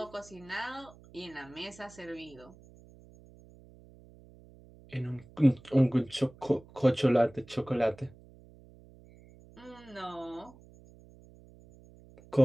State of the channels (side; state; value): right; noise; hum, 23 dB below the sound